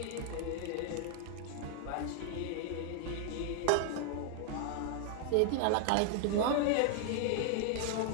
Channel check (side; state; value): both; different; correlation 0.00